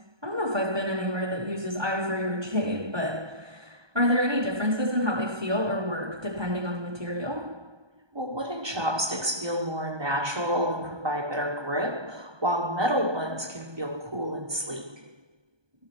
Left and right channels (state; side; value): late; left; 1.2 ms